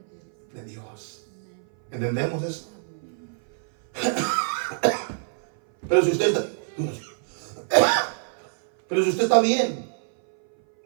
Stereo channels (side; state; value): left; silent; 58 dB below the other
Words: de Dios. ¿Entendemos eso? Pero si usted está bien,